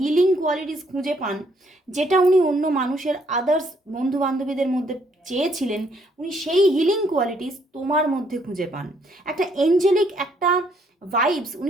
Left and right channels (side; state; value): both; normal; correlation 0.69